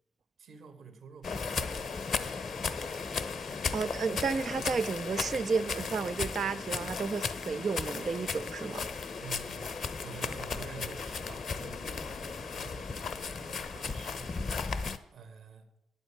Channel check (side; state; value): both; normal; correlation 0.77